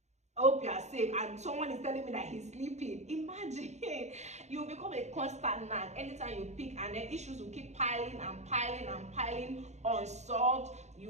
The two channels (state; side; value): late; left; 0.33 ms